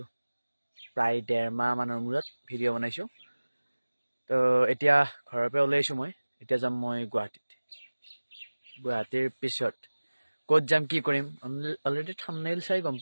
প্ৰায় 1.5 মাহ মানৰ মূৰত ভিডিঅ' বনাইছোঁ। তো এতিয়া ঘৰৰ পৰা ওলাইছোঁ মই। এতিয়া যাম মই গুৱাহাটীৰ পিছত ক'ত যাম কি কৰিম অলৰেডি থাম্বনেইল চাই গম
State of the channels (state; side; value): inverted; both; correlation -1.00